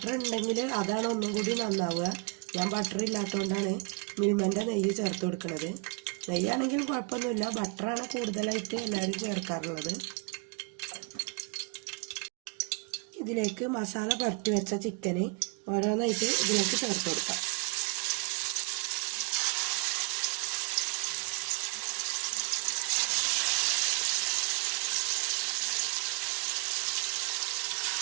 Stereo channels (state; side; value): quieter; left; 34.3 dB